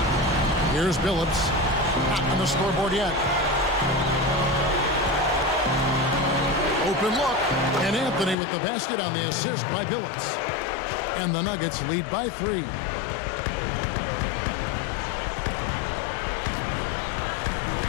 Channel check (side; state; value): right; drops out; at 8.3 s